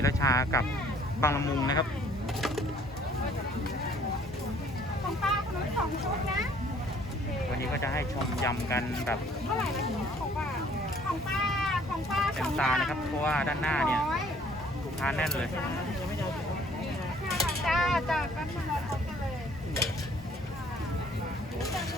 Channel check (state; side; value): normal; both; correlation 0.58